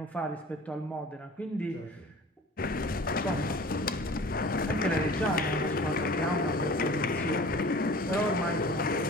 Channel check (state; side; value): normal; both; correlation 0.43